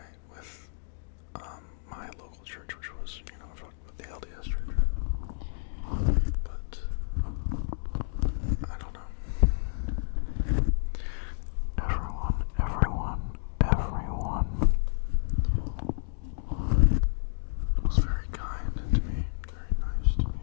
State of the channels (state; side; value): silent; right; digital silence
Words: with my local church, which was, you know, the LDS church. But I don't know. Everyone was very kind to me, very nice to me.